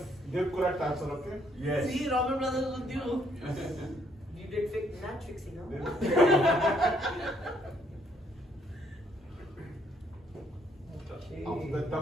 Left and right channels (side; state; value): both; normal; correlation 0.68